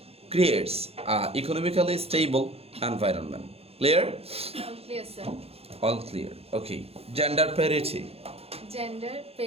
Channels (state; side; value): late; left; 0.29 ms